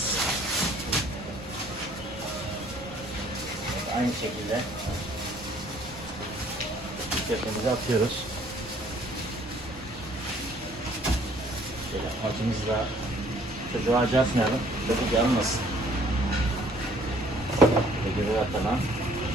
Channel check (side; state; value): both; normal; correlation 0.59